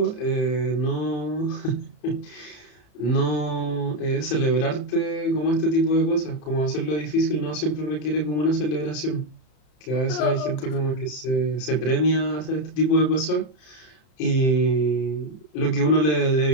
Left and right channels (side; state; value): right; late; 33 ms